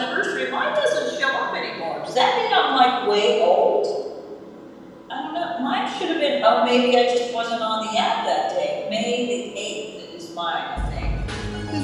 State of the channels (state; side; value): identical; both; correlation 1.00